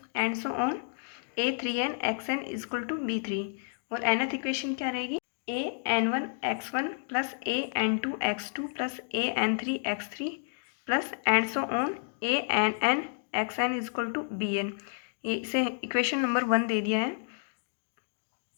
and so on a3n xn equal to b3। और nth equation क्या रहेगी? an1 x1 plus an2 x2 plus an3 x3 plus and so on ann xn equal to bn। इसे equation number 1 दे दिया है।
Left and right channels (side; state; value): right; silent; digital silence